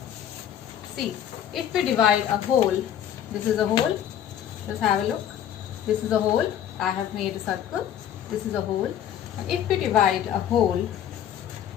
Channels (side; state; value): right; quieter; 10.2 dB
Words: See, if we divide a whole, this is a whole. Just have a look. This is a whole. I have made a circle. This is a whole. And if we divide a whole